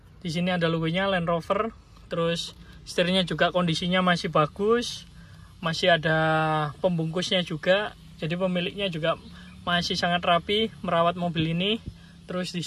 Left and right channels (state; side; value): identical; both; correlation 1.00